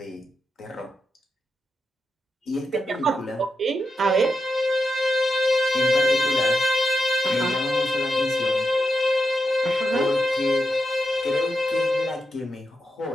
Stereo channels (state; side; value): normal; both; correlation 0.86